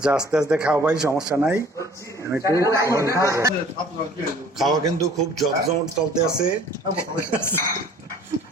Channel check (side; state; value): both; normal; correlation 0.51